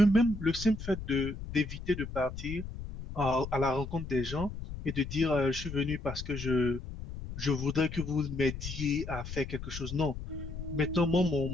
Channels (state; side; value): noise; left; rumble, 9 dB below the sound